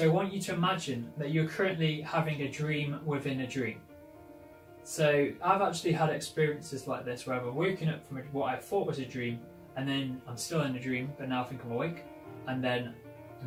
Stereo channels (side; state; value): both; identical; correlation 1.00